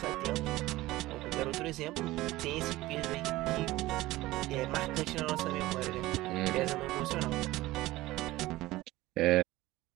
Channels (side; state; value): left; quieter; 17.9 dB